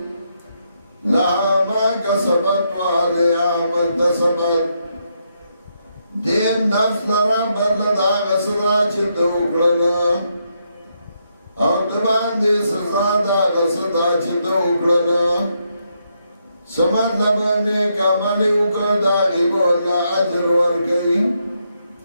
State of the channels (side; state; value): both; inverted; correlation -0.79